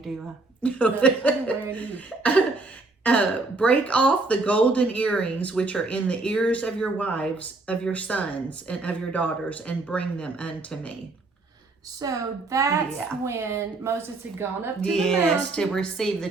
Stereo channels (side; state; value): left; quieter; 3.3 dB